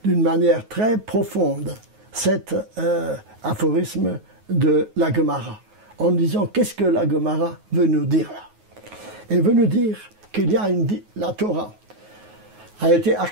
d'une manière très profonde cet aphorisme de la Gemara, en disant qu'est-ce que la Gemara veut nous dire là. Elle veut nous dire qu'il y a la Torah a été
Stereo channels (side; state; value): left; late; 9.4 ms